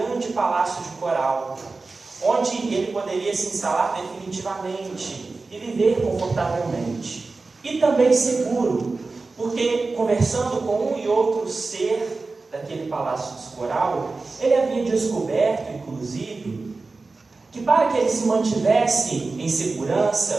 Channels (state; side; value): quieter; left; 3.8 dB